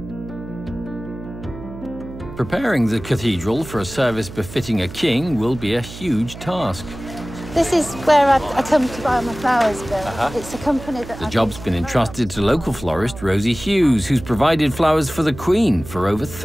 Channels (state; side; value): noise; right; hum, 13 dB below the sound